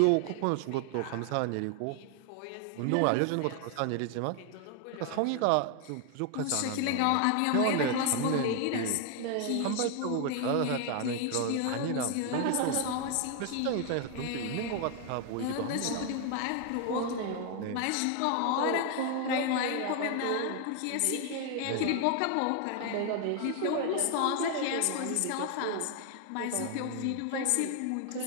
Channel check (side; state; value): both; different; correlation 0.00